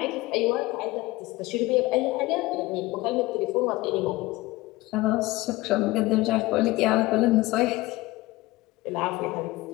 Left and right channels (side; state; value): right; quieter; 19.7 dB